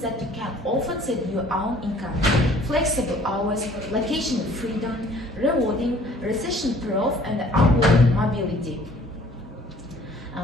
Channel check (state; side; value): normal; both; correlation 0.55